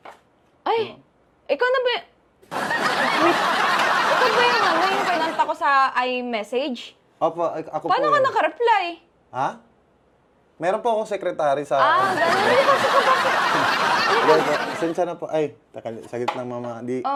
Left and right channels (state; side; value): identical; both; correlation 1.00